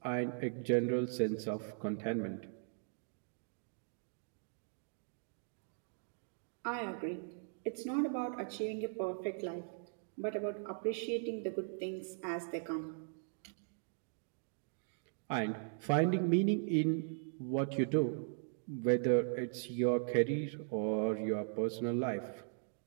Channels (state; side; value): silent; left; digital silence